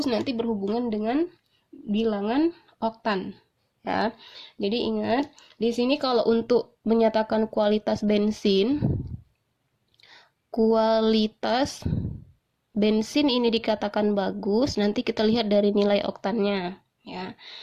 nanti berhubungan dengan bilangan oktan ya. Jadi ingat, di sini kalau untuk menyatakan kualitas bensin ini dikatakan bagus, nanti kita lihat dari nilai oktannya ya.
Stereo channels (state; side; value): identical; both; correlation 1.00